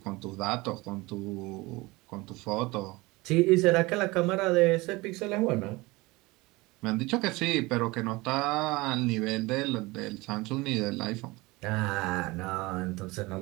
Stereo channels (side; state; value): left; quieter; 22.4 dB